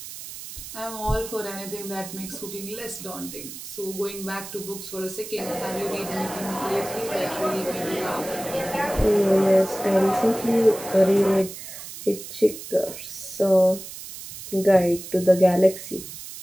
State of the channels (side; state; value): right; noise; hiss, 12 dB below the sound